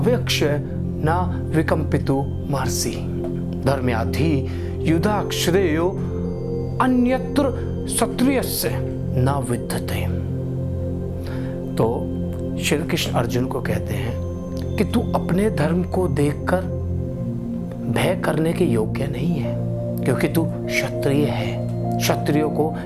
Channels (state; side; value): identical; both; correlation 1.00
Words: न विकम्पितु महर्षि धर्म्याधि युधा श्रेयो अन्यत्र क्षत्रियस्य न विद्यते। तो श्री कृष्ण अर्जुन को कहते हैं कि तू अपने धर्म को देखकर भय करने के योग्य नहीं है, क्योंकि तू क्षत्रिय है। क्षत्रियों को